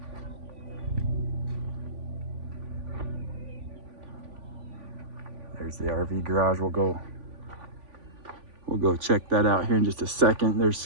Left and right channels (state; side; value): late; left; 3.5 ms